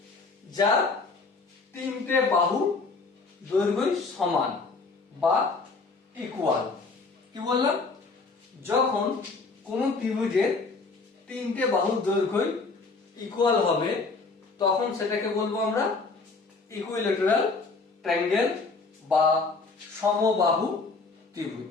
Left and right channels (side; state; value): right; quieter; 4.0 dB